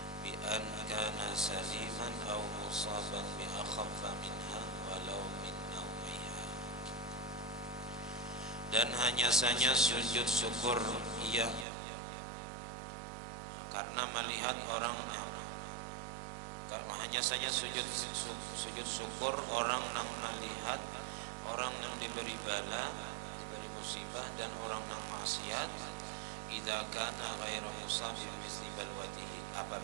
bi an kana saliman aw musaban bi akhaffa minha walau min nawiha. Dan hanya saja sujud syukur ia karena melihat orang, hanya saja sujud syukur orang yang melihat orang yang diberi bala, diberi musibah, dan orang yang maksiat, idza kana ghairu musabbi misli balwatihi,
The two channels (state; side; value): drops out; left; at 11.7 s